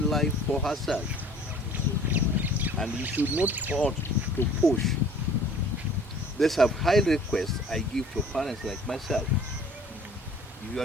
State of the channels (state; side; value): normal; both; correlation 0.51